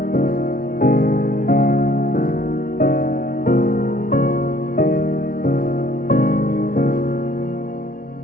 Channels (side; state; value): right; late; 0.42 ms